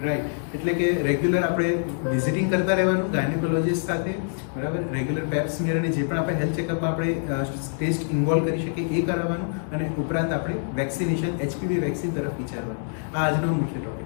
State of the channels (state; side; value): silent; right; digital silence